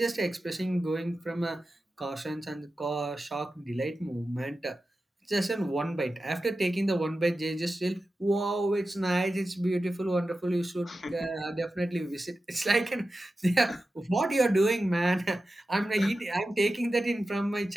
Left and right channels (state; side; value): normal; both; correlation 0.93